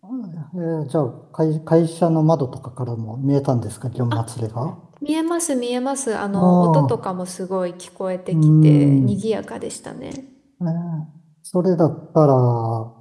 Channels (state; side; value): identical; both; correlation 1.00